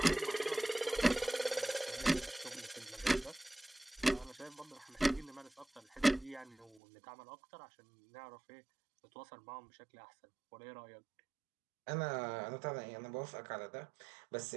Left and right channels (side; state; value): left; drops out; at 6.8 s